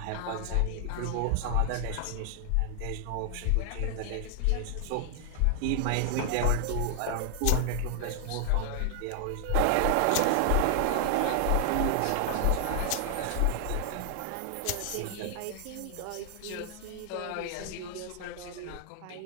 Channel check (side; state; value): both; different; correlation 0.00